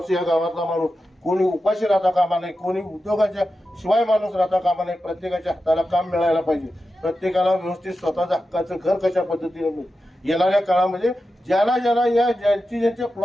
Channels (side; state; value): both; normal; correlation 0.91